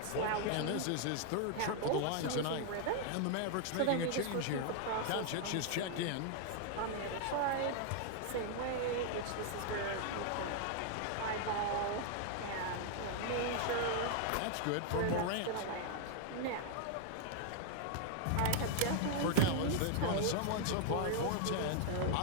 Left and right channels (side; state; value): both; different; correlation 0.00